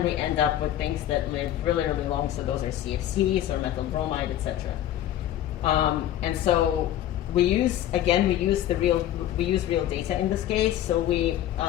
we end up with things that live really, really long, so those are CFCs or methyl bromide, etc. And so we use real data in this case. So we,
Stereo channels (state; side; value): quieter; right; 12.3 dB